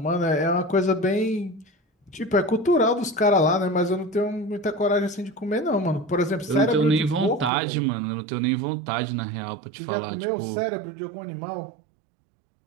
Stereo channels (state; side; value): drops out; left; at 7.5 s